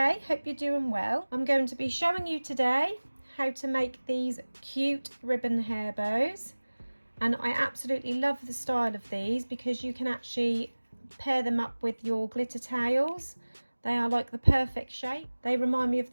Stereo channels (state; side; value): inverted; both; correlation -1.00